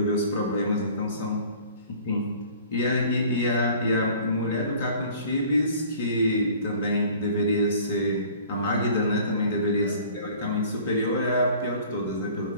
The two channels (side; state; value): both; inverted; correlation -0.49